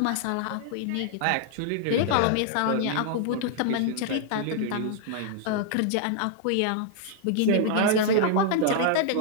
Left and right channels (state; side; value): different; both; correlation -0.01